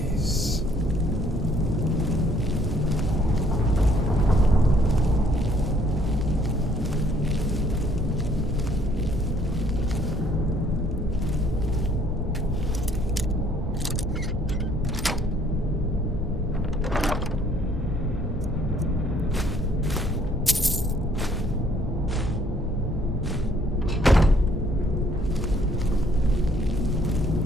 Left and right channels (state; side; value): normal; both; correlation 0.63